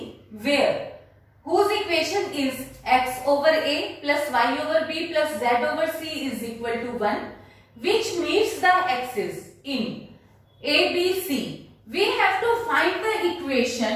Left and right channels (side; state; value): both; identical; correlation 1.00